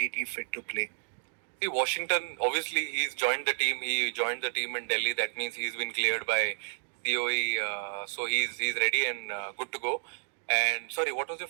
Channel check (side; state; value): left; silent; digital silence